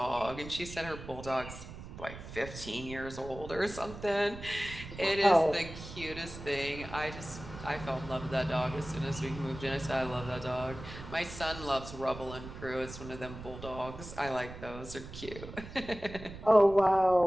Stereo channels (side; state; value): right; noise; rumble, 12 dB below the sound